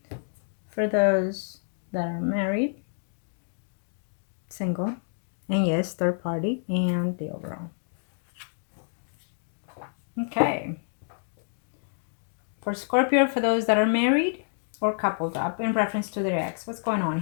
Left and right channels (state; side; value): silent; right; digital silence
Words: For those that are married, single, and yes, third party, and the overall. Okay. For Scorpio, for those that are married or coupled up in reference to their ex, what's going on